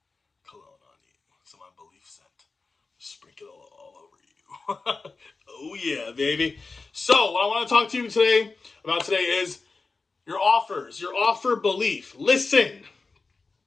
cologne on you. Some of my Belief scent. Sprinkle it all over you. Oh, yeah, baby. So, what I want to talk to you about today is your offers, your offer belief. Listen,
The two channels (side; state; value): right; quieter; 4.1 dB